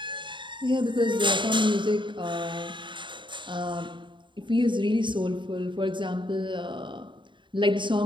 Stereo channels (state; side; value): late; left; 0.23 ms